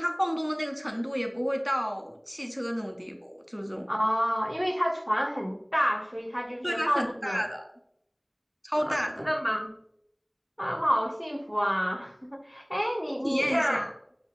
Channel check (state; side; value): identical; both; correlation 1.00